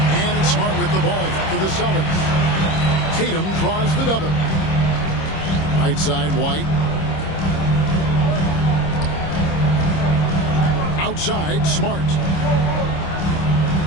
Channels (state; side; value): late; right; 26 ms